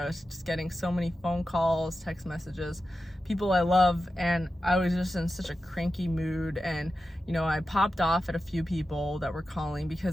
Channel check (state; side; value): normal; both; correlation 0.92